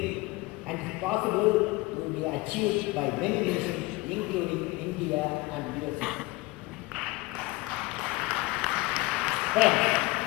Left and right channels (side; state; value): right; quieter; 21.8 dB